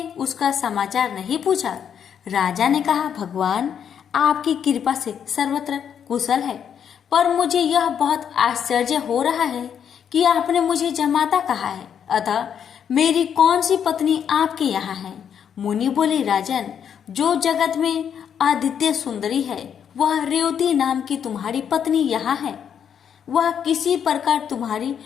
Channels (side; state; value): right; quieter; 8.2 dB